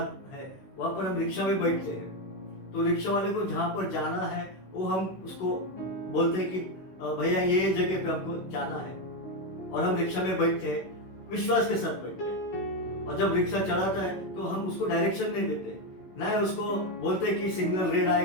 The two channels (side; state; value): right; late; 16 ms